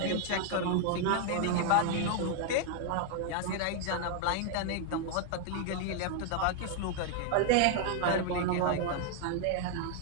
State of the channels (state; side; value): different; both; correlation 0.00